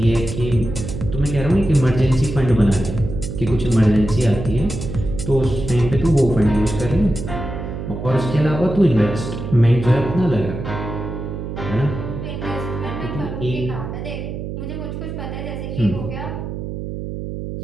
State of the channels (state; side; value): noise; right; hum, 6 dB below the sound